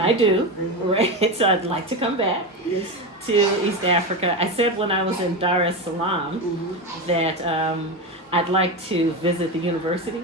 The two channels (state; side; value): normal; both; correlation 0.17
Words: I do, right? So I'd like to come back Yes. to East Africa. I said when I was in Dar es Salaam that I'd like to visit the university,